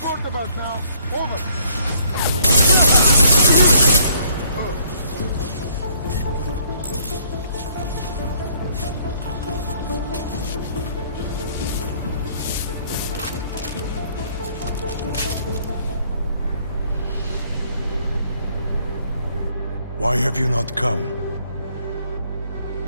device now. Over. Why have you not come?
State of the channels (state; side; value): inverted; both; correlation -0.65